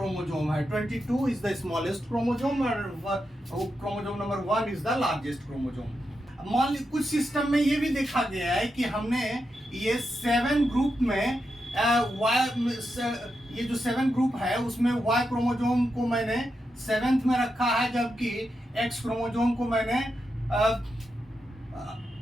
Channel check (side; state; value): both; normal; correlation 0.86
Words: है। 22 इज द स्मॉलेस्ट क्रोमोजोम और chromosome number 1 is the largest chromosome. मान ली कुछ सिस्टम में ये भी देखा गया है कि हमने ये 7 ग्रुप में ये जो 7 ग्रुप है उसमें Y क्रोमोजोम को मैंने 7th में रखा है, जबकि X क्रोमोजोम को मैंने